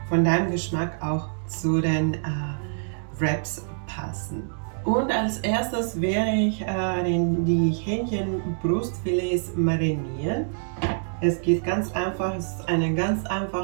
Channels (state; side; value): silent; left; digital silence